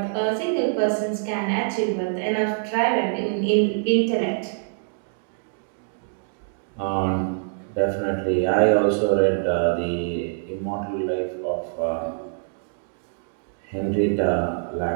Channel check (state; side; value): silent; left; digital silence